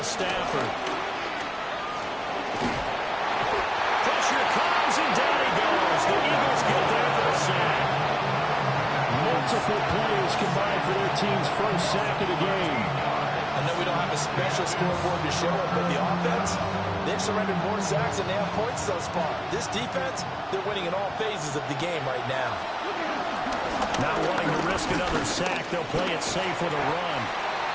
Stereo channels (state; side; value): identical; both; correlation 1.00